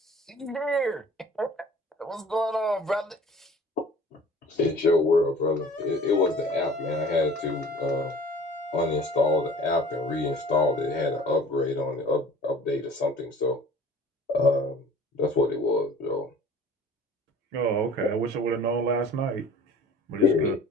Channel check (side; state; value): both; normal; correlation 0.46